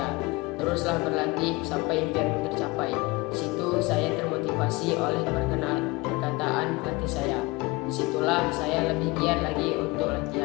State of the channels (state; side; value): quieter; right; 23.6 dB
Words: Teruslah berlatih sampai impianmu tercapai. Di situ saya termotivasi oleh perkataan pelatih saya. Disitulah saya lebih giat lagi untuk